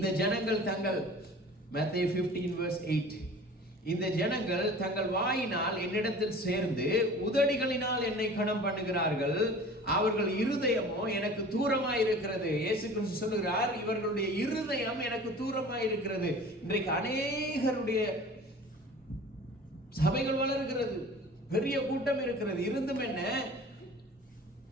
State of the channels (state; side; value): normal; both; correlation 0.42